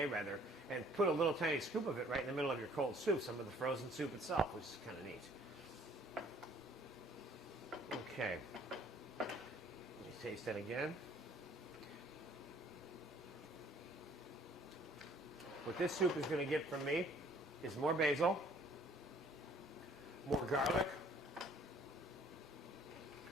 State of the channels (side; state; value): both; normal; correlation 0.58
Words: rather, and put a little tiny scoop of it right in the middle of your cold soup, some of the frozen soup itself, which is kind of neat. Okay. Let me taste that again. What this soup is going to get from me is more basil, more garlic,